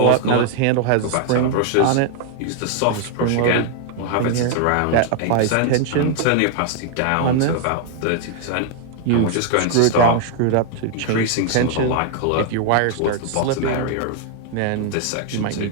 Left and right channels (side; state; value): both; different; correlation 0.00